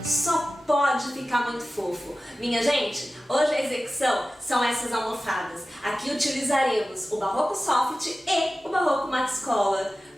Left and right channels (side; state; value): both; normal; correlation 0.95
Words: só pode ficar muito fofo. Minha gente, hoje a execução são essas almofadas. Aqui utilizaremos o barroco soft e o barroco Max Collar.